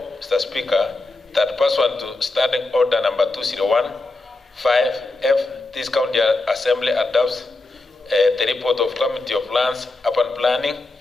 Mr. Speaker, that pursuant to Standing Order number 2015F, this County Assembly adopts the report of Committee of Lands, Urban Planning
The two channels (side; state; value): right; quieter; 3.1 dB